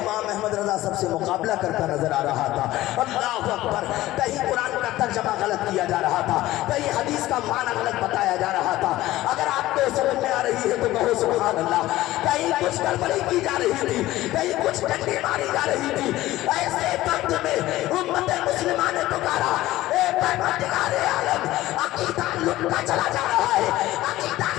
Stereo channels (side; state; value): right; quieter; 16.3 dB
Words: अहमद रज़ा सबसे मुकाबला करता नजर आ रहा था। अल्लाहु अकबर। कहीं कुरान का तर्जमा गलत किया जा रहा था, कहीं हदीस का माना गलत बताया जा रहा था। अगर आपको समझ में आ रही है तो कहो सुभान अल्लाह। कहीं कुछ गड़बड़ी की जा रही थी, कहीं कुछ डंडी मारी जा रही थी, ऐसे वक्त में उम्मत मुस्लिमा ने पुकारा, ए परवरदिगार आलम, अकीदा लुटता चला जा रहा है, अकीदा